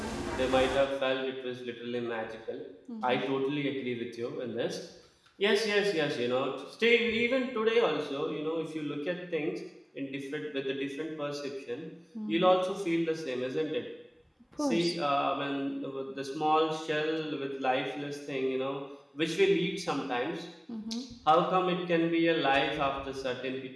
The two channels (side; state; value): both; identical; correlation 1.00